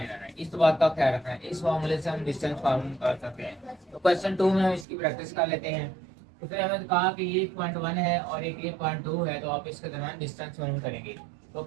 आना है, इस बात का ख्याल रखना है। इस मामले से हम डिस्टेंस फार्मूला कर सकते हैं। तो क्वेश्चन 2 में हम इसकी प्रैक्टिस कर लेते हैं। उसने हमें कहा कि ये पॉइंट 1 है और एक ये पॉइंट 2 है, तो आप इसके दरमियान डिस्टेंस मालूम करेंगे। तो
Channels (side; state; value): left; drops out; at 4.9 s